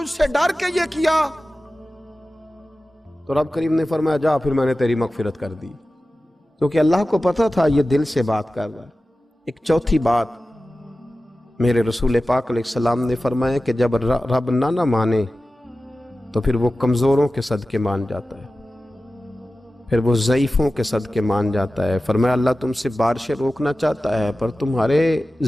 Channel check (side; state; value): both; normal; correlation 0.95